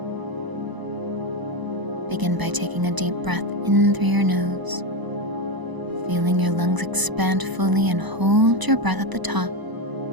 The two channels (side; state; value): left; late; 1.0 ms